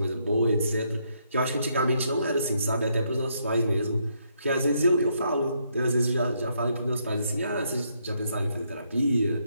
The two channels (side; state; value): both; inverted; correlation -0.74